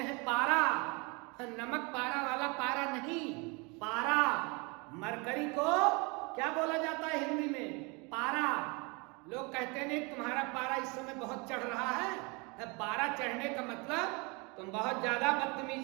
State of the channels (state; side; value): quieter; left; 29.4 dB